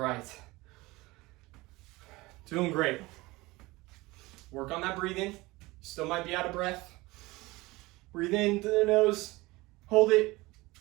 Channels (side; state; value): left; quieter; 21.3 dB